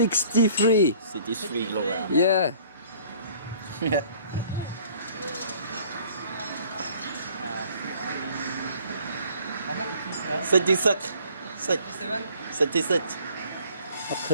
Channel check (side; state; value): both; inverted; correlation -0.54